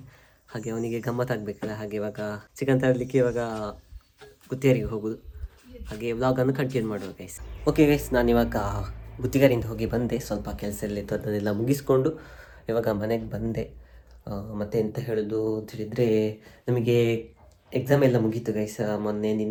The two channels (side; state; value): both; identical; correlation 1.00